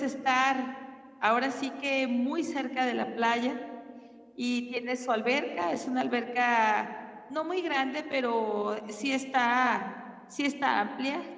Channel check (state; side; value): identical; both; correlation 1.00